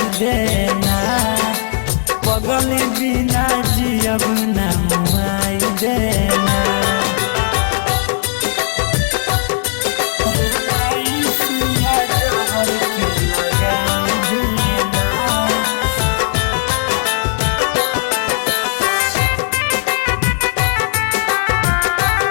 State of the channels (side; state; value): right; silent; digital silence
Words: देना पगली बिना जियब ना मनाई देना